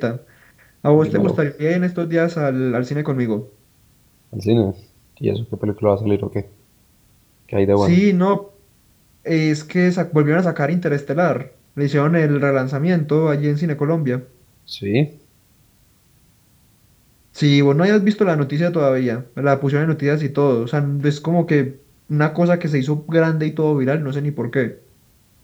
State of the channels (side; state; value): both; identical; correlation 1.00